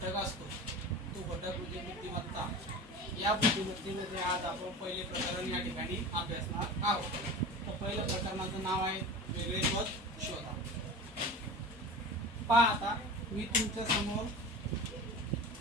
असतो तो घटक म्हणजे बुद्धिमत्ता। या बुद्धिमत्तेमध्ये आज आपण पहिले प्रकरण या ठिकाणी अभ्यासणार आहोत। तर पहिल्या प्रकरणाचं नाव आहे वेगळे पद शोधा। पहा, आता मी तुमच्या समोर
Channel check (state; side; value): normal; both; correlation 0.33